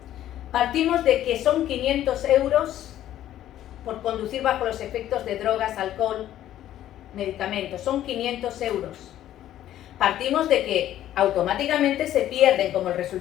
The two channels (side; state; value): right; quieter; 12.4 dB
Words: Partimos de que son 500 euros por conducir bajo los efectos de drogas, alcohol, medicamentos. Son 500 euros. Partimos de que automáticamente se pierden, como el